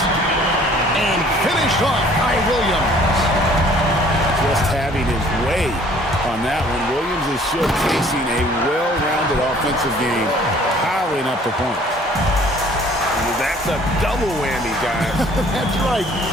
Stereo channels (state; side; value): normal; both; correlation 0.55